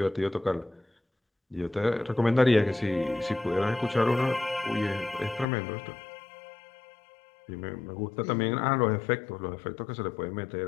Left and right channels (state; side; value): drops out; right; at 5.5 s